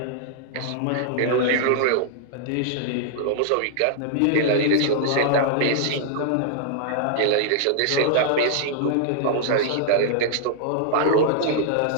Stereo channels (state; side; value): different; both; correlation -0.01